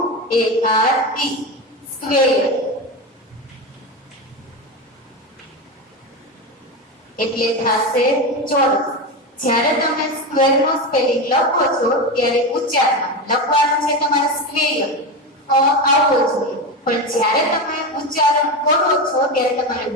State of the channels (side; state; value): both; normal; correlation 0.18